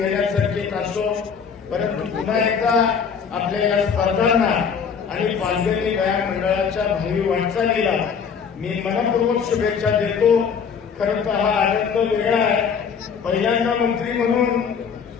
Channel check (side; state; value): right; quieter; 6.5 dB